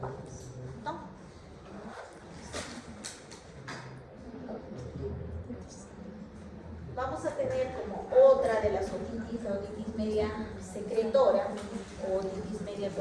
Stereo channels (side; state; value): both; identical; correlation 1.00